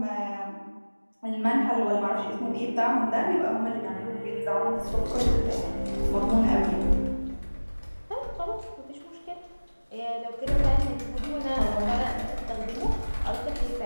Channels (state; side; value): inverted; both; correlation -1.00